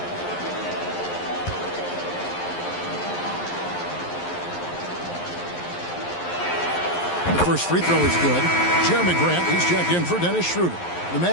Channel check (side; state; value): right; late; 11 ms